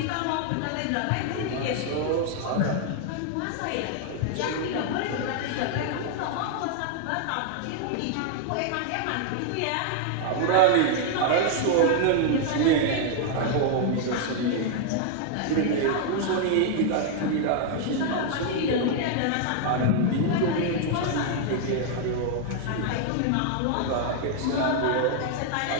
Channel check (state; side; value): different; both; correlation 0.00